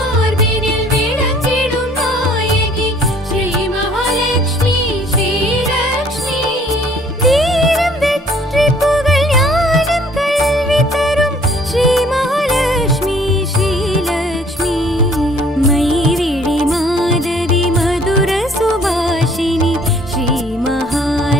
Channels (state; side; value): normal; both; correlation 0.57